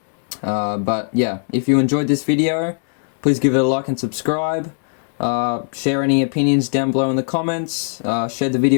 But yeah, if you enjoyed this video, please give it a like and subscribe. Share any opinions down below in the comments. Share the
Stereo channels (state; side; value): silent; right; digital silence